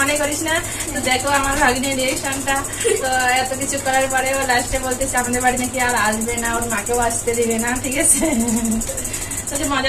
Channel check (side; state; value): both; identical; correlation 1.00